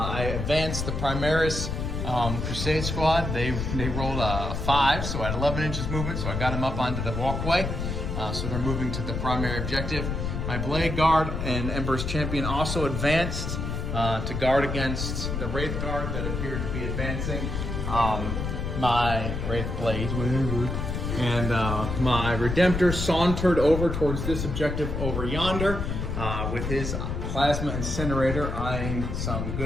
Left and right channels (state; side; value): noise; left; rumble, 3 dB below the sound